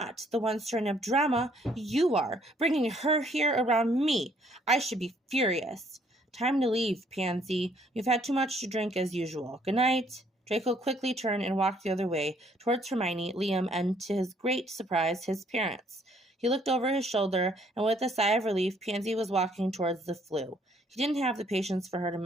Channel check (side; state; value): both; normal; correlation 0.64